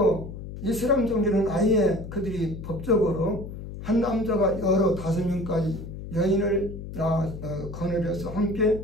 이슬람 종교는 아예 그들이 법적으로 한 남자가 여러 5명까지 여인을 거느려서 함께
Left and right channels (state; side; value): noise; left; hum, 10 dB below the sound